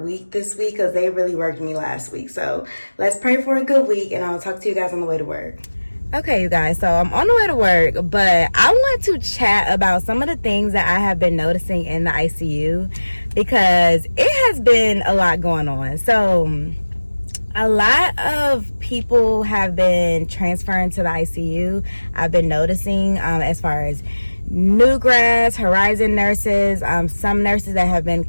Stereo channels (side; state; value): both; inverted; correlation -1.00